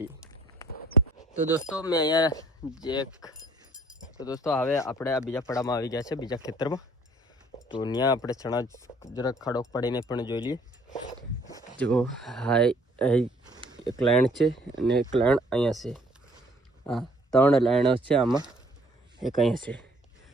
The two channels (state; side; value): normal; both; correlation 0.59